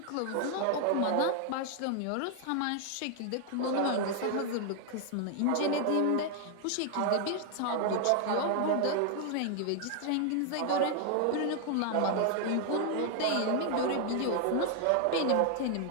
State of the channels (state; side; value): different; both; correlation 0.00